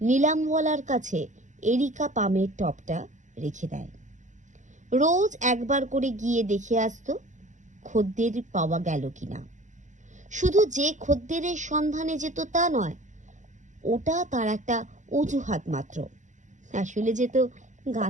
নিলামওয়ালার কাছে এরিকা পামের টবটা রেখে দেয়। রোজ একবার করে গিয়ে দেখে আসতো খদ্দের পাওয়া গেল কিনা। শুধু যে খদ্দেরের সন্ধানে যেত তা নয়, ওটা তার একটা অজুহাত মাত্র, আসলে যেত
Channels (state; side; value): late; left; 0.35 ms